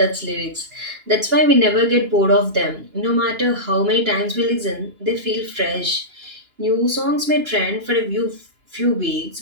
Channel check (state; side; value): late; left; 2.9 ms